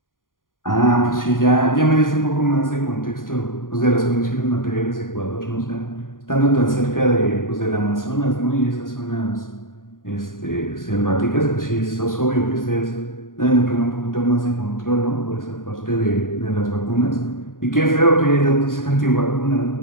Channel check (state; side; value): late; right; 0.90 ms